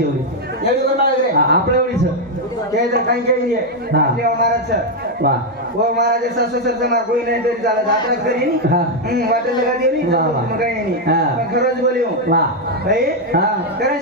एवढी आपल्या एवढीच ते तर काही केली आहे महाराज वा वो महाराज सासू सरचं मार कोई नाही तरी चालत आपल्याच करी वाटेल लगा देऊ मग काही नाही खरंच बोलियो वा भाई करण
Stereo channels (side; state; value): both; normal; correlation 0.02